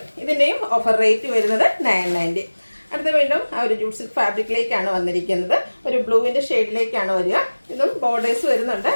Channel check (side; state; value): both; inverted; correlation -1.00